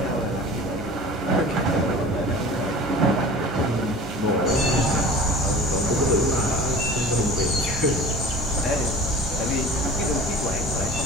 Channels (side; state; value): both; normal; correlation 0.40